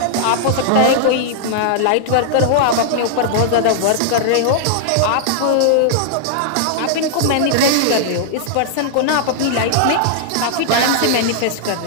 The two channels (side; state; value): both; different; correlation -0.01